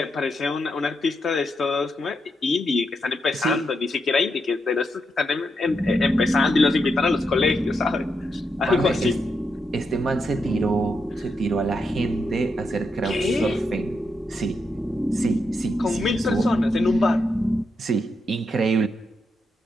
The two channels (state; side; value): normal; both; correlation 0.83